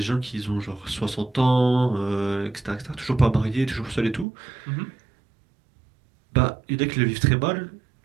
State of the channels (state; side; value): drops out; left; at 4.2 s